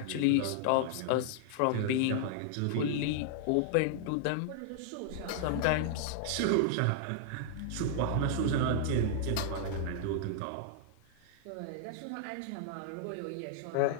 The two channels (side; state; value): both; different; correlation -0.01